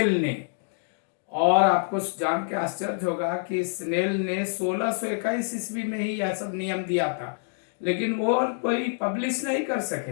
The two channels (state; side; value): silent; right; digital silence